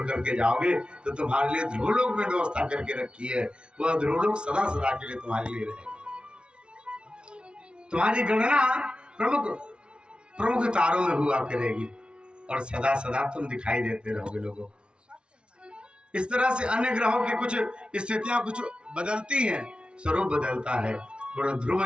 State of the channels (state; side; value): late; left; 0.057 ms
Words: करके जाओगे तो तुम्हारे लिए ध्रुवलोक में व्यवस्था करके रखी है। वह ध्रुवलोक सदा सदा के लिए तुम्हारे लिए रहेगा। तुम्हारी गणना प्रमुख तारों में हुआ करेगी, और सदा सदा तुम दिखाई देते रहोगे लोगों को। इस तरह से अन्य ग्रहों की कुछ स्थितियां कुछ बदलती हैं, स्वरूप बदलता है। बड़ा ध्रुव